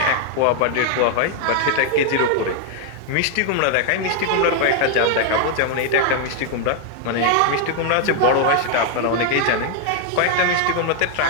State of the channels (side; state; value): both; different; correlation 0.00